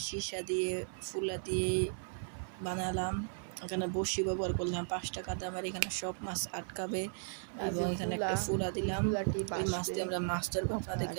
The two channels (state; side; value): silent; left; 54 dB below the other